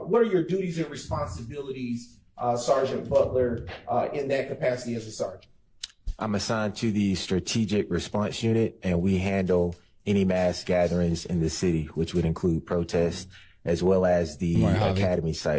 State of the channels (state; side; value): identical; both; correlation 1.00